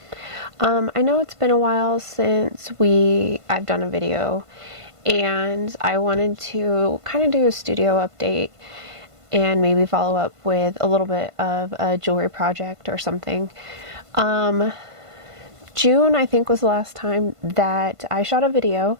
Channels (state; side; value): late; left; 1.5 ms